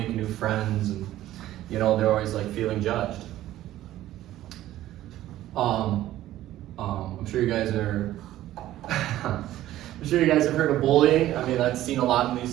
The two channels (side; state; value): left; quieter; 14.1 dB